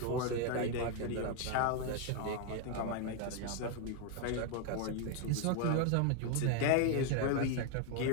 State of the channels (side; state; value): both; different; correlation 0.01